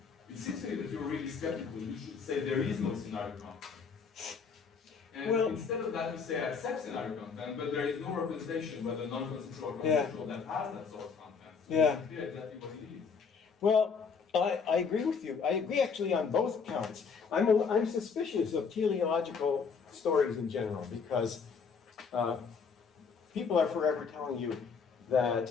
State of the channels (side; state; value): right; quieter; 5.6 dB